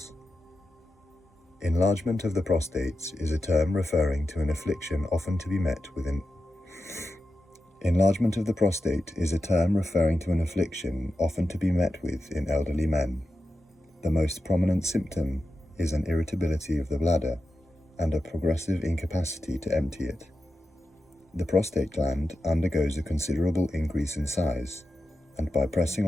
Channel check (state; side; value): normal; both; correlation 0.91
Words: Enlargement of the prostate is a term referring to an affliction often to be met with Enlargement of the prostate is a term referring to an affliction often to be met with in elderly men. The most prominent symptom is an irritability of the bladder and a progressive incapacity to empty it. The prostate gland undergoes a considerable increase in size, and by pressing